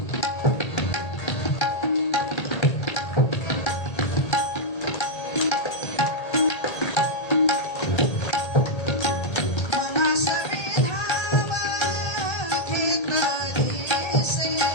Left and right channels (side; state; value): right; late; 1.8 ms